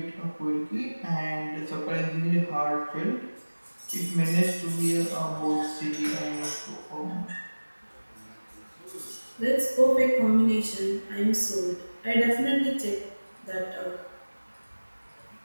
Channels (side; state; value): both; inverted; correlation -1.00